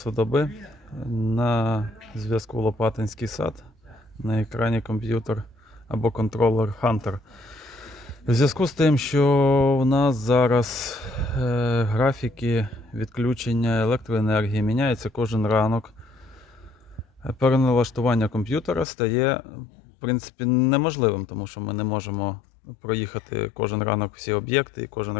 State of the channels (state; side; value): drops out; right; at 18.9 s